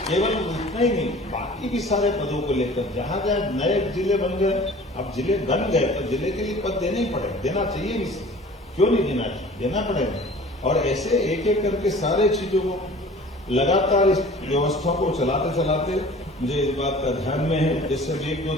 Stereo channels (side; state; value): both; normal; correlation 0.46